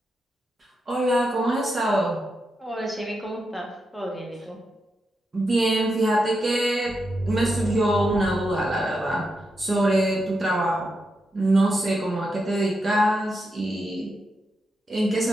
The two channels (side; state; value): both; normal; correlation 0.85